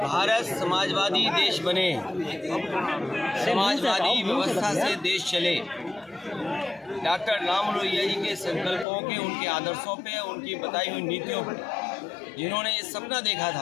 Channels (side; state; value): right; drops out; at 8.8 s